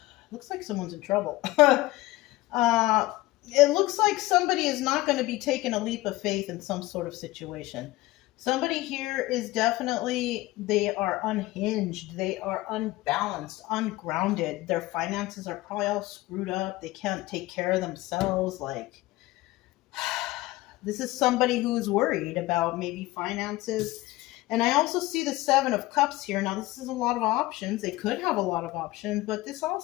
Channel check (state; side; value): quieter; right; 18.6 dB